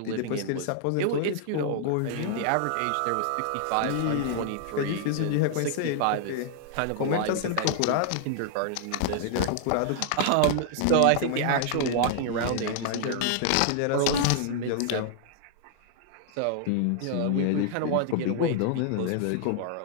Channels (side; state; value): both; different; correlation 0.00